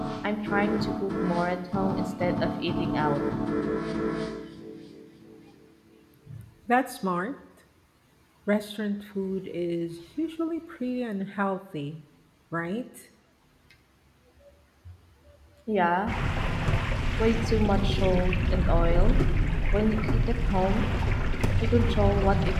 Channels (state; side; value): identical; both; correlation 1.00